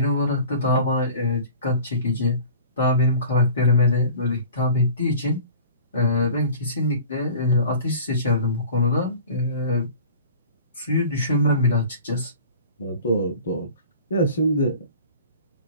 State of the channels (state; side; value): inverted; both; correlation -0.43